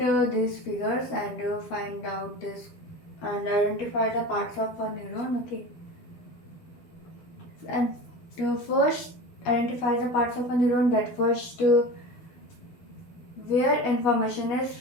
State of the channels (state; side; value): late; right; 12 ms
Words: these figures and find out this and identify the parts of a neuron. Okay. And to first identify the parts of a neuron, that first where information is